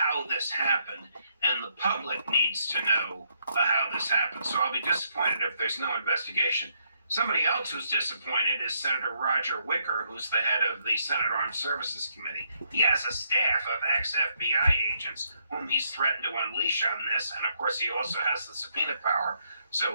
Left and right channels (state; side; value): inverted; both; correlation -0.74